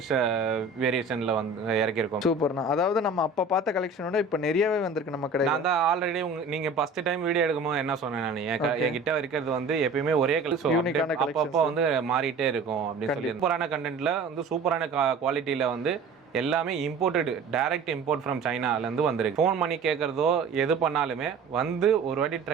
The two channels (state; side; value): quieter; left; 4.0 dB